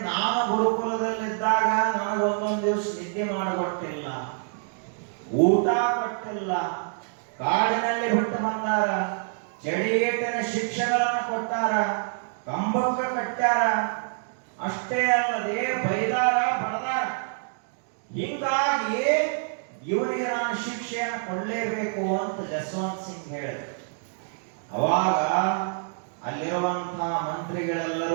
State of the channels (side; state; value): left; silent; 61 dB below the other